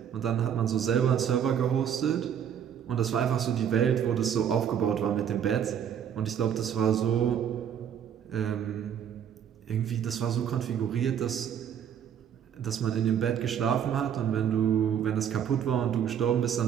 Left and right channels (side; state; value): left; quieter; 8.8 dB